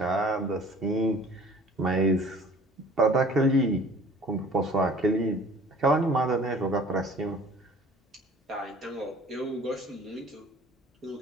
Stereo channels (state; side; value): normal; both; correlation 0.49